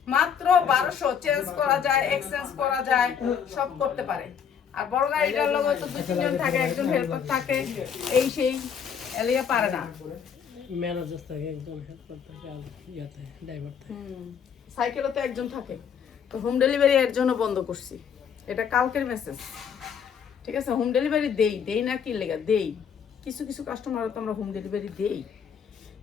মাত্র 1200, চেঞ্জ করা যায়, এক্সচেঞ্জ করা যায়, সব করতে পারে। আর বড় গাড়িটার লোক তো 2-3 জন থাকে, একজন হেল্পার থাকে, এই সেই এলিয়া পারে না। ম্যানেজার থাকে, একজন হেল্পার থাকে, আর ইয়াতে ড্রাইভার থাকে। সাইকেলও তো একজন থাকে। তো হোম ডেলিভারি এর জন্য বন্ধ করছি, এটা কালকের মেসেজ, ঠিক আছে? হোম ডেলিভারি দেই না, কি লেগা দেই, কিছু কিছু কাস্টমার তো আমরা হোম ডেলিভারি দেই,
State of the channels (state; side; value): quieter; right; 7.5 dB